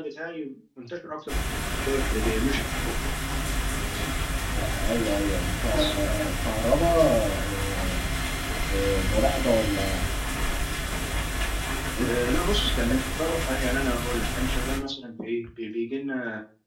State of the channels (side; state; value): both; identical; correlation 1.00